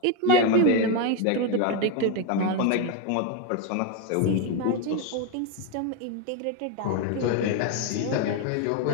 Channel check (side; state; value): both; different; correlation 0.02